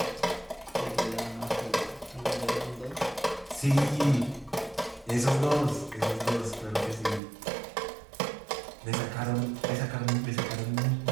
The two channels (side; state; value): left; drops out; at 7.2 s